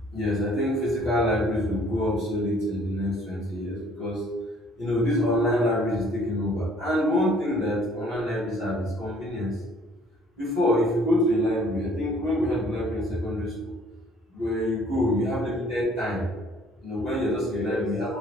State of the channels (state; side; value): normal; both; correlation 0.58